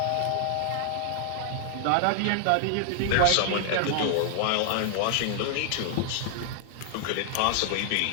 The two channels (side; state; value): both; different; correlation -0.01